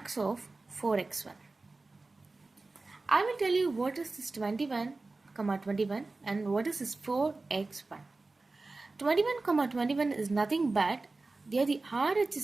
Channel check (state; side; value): quieter; left; 3.4 dB